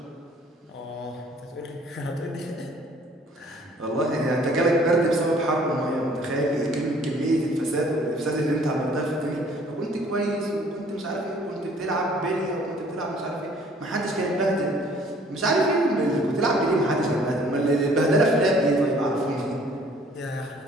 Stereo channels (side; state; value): both; normal; correlation 0.57